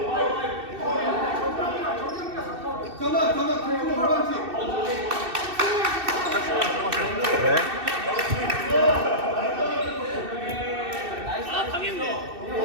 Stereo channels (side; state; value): left; late; 2.6 ms